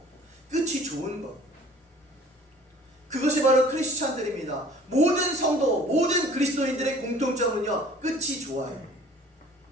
끝이 좋은 것. 그것이 바로 크리스찬들입니다. 모든 성도, 모든 그리스도인들의 공통점은요, 끝이 좋아요.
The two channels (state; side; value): normal; both; correlation 0.51